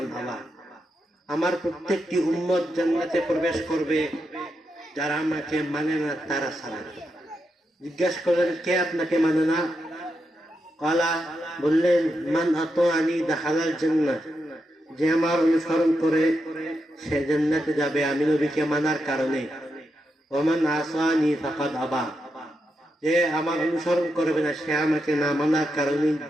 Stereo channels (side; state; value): both; normal; correlation 0.85